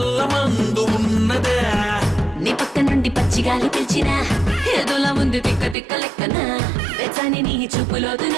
మందు ఉన్నదే. నీ పక్క నుండి పచ్చిగాలి పిలిచినా, ఏదోలా ఉంది తిక్క లెక్కనా, వెచ్చని నీ చూపులోదు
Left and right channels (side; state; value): left; drops out; at 5.8 s